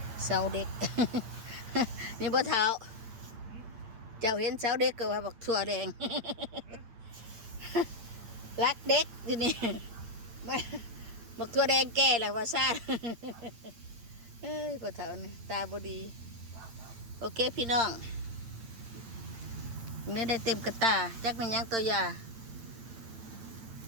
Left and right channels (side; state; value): left; late; 8.8 ms